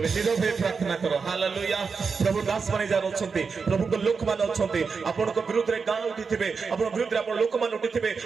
नीरव हे प्रार्थना करो हालेलुया प्रभु दास माने जान अछंती प्रभु को लोक मान अछंती आपण को विरुद्ध रे गां उठिथिबे आपण विरुद्ध रे आपण लोक मान उठिथिबे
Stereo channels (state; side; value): quieter; left; 5.2 dB